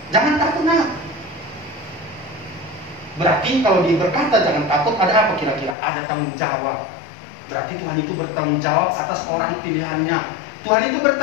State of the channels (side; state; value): right; drops out; at 5.8 s